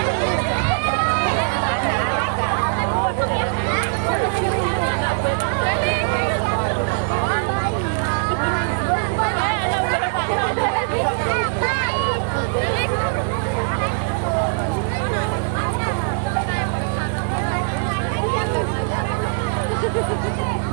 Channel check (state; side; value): silent; left; 64 dB below the other